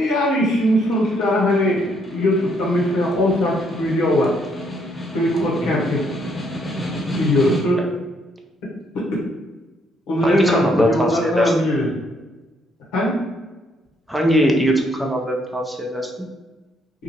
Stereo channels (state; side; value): normal; both; correlation 0.71